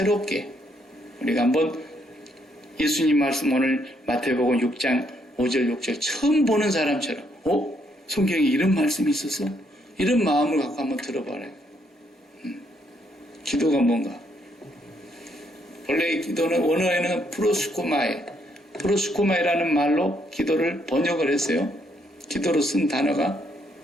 우리가 한번 예수님 말씀 오늘 마태복음 6장 5절 6절 처음 보는 사람처럼 성경에 이런 말씀이 있었어? 이런 마음을 갖고 한번 들어봐라. 기도가 뭔가? 원래 기도는 원어에는 프로스코마이라는 말로 기도를 번역을 했어요. 기도로 쓴 단어가.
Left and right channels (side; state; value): both; normal; correlation 0.73